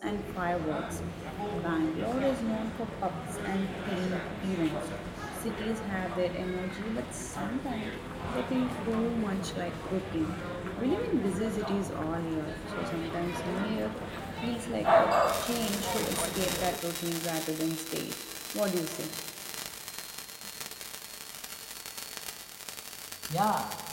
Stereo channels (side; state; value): both; identical; correlation 1.00